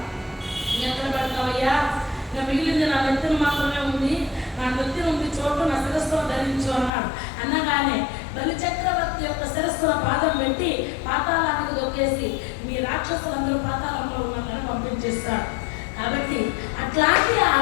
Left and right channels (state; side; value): drops out; right; at 6.9 s